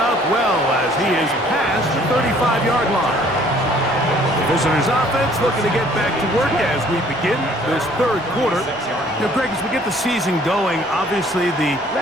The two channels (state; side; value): normal; both; correlation 0.58